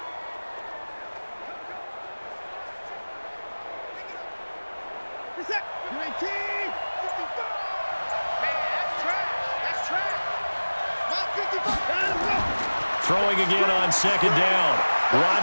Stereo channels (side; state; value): both; inverted; correlation -1.00